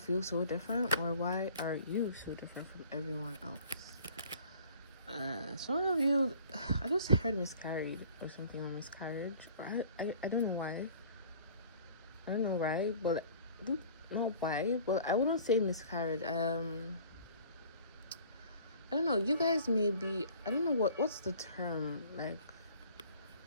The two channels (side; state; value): both; inverted; correlation -0.50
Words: so different? Or why are you so different from everyone else? Some of you, I just heard miscarried or something on miscarriage. I don't know why. I don't know why, but not why, but I wouldn't say miscarriage. I don't know. You guys may be, I don't know what's the term, like,